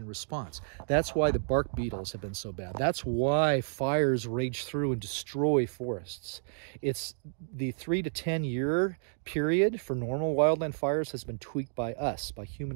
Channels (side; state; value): left; silent; digital silence